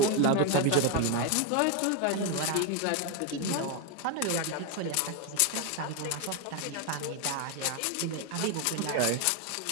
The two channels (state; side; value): different; both; correlation 0.01